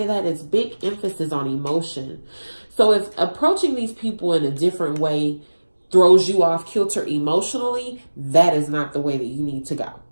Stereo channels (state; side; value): inverted; both; correlation -1.00